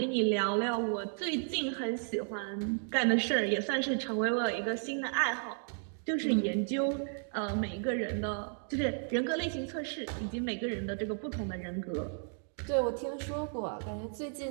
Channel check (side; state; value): left; silent; 55 dB below the other